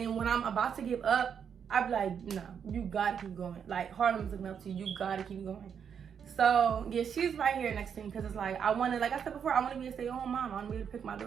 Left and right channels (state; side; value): quieter; left; 7.5 dB